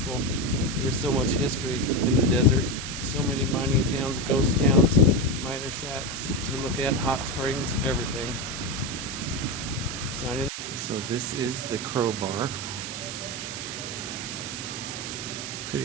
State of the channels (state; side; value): noise; right; hiss, 7 dB below the sound